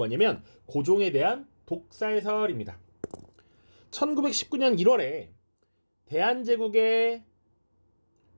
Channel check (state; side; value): inverted; both; correlation -1.00